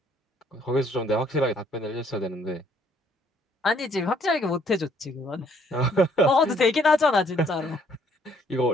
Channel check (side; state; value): both; normal; correlation 0.64